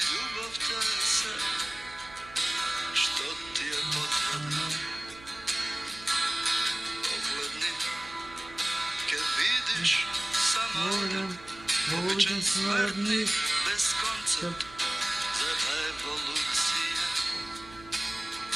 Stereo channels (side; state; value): right; noise; hum, 20 dB below the sound